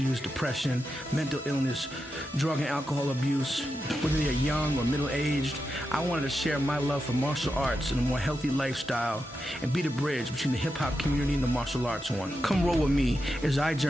depression, mental illness, drug and alcohol abuse, whether they're young or middle-aged, I wanted to share my love for martial arts and a more healthy lifestyle and be the bridge between the hip-hop community and the martial arts one. Come roll with me as I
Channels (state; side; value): normal; both; correlation 0.88